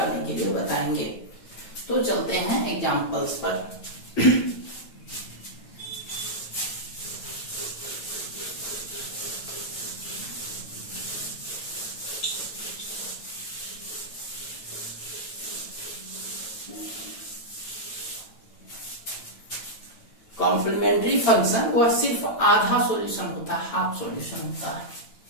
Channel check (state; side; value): late; right; 9.0 ms